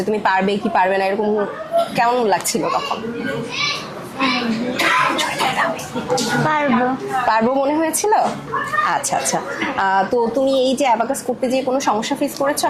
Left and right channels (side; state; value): both; identical; correlation 1.00